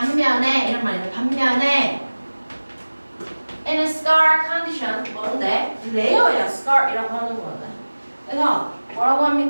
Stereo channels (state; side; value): inverted; both; correlation -1.00